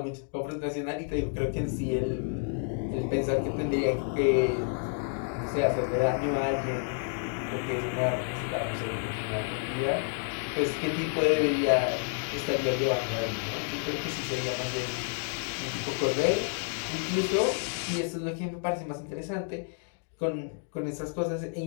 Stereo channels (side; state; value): right; silent; 57 dB below the other